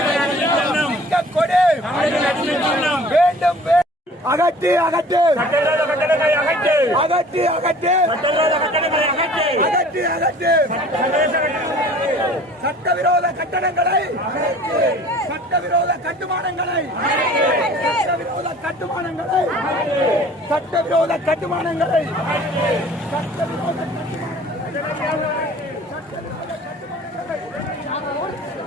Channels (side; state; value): both; normal; correlation 0.48